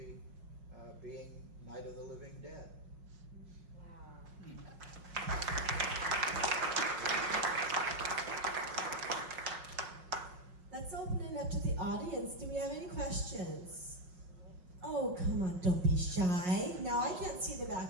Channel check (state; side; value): late; left; 5.5 ms